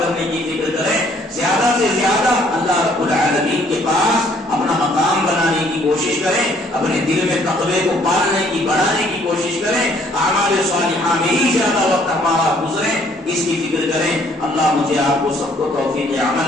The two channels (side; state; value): both; normal; correlation 0.62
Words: کی فکر کریں، زیادہ سے زیادہ اللہ رب العالمین کے پاس اپنا مقام بنانے کی کوشش کریں، اپنے دل میں تقوی کو پالنے کی، بڑھانے کی کوشش کریں، اعمال صالحہ میں ہی زیادہ وقت ہمارا گزرے، اس کی فکر کریں۔ اللہ مجھے آپ کو سب کو توفیق